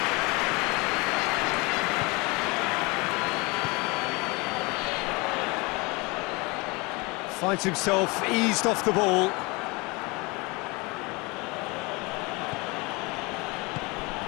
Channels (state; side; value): quieter; right; 26.3 dB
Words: Finds himself eased off the ball.